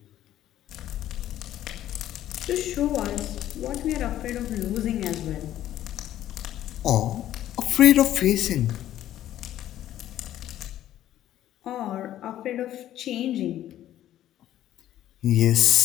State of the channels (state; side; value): quieter; right; 12.6 dB